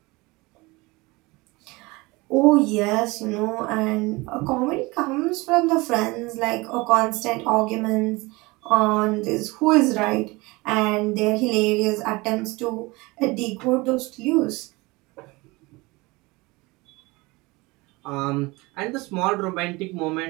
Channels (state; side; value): quieter; left; 23.6 dB